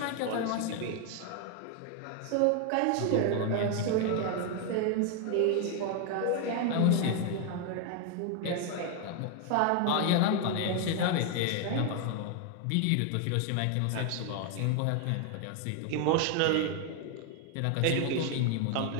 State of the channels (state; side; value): different; both; correlation 0.01